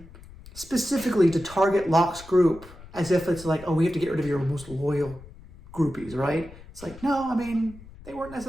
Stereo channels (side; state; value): left; noise; rumble, 19 dB below the sound